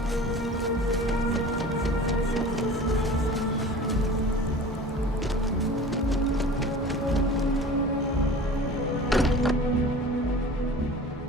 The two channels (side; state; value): both; normal; correlation 0.39